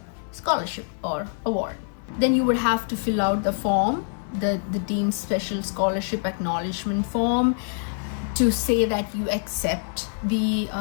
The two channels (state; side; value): silent; right; digital silence